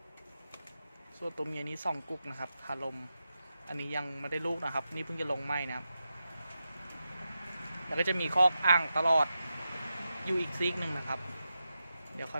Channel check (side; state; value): both; inverted; correlation -0.89